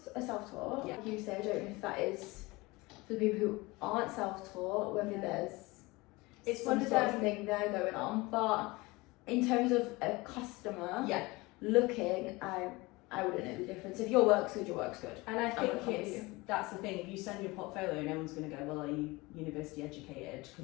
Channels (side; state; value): right; quieter; 22.8 dB